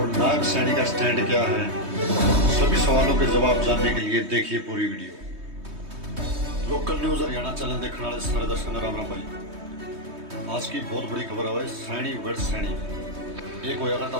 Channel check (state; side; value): late; left; 3.2 ms